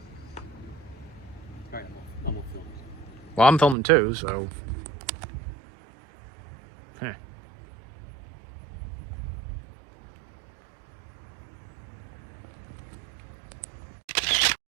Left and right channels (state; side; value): drops out; left; at 3.8 s